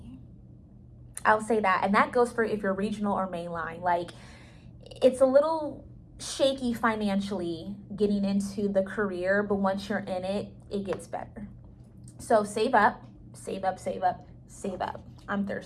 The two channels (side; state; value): both; identical; correlation 1.00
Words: I'll say that. And that goes for if you're regional or mainline. Like, it's a little shaky financially getting into the career, but once you're in it, it gets better. So save up, save up, save up, save up. I'm